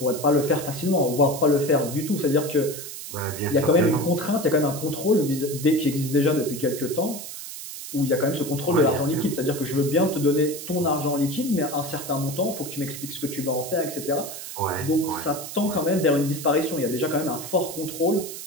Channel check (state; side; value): noise; right; hiss, 10 dB below the sound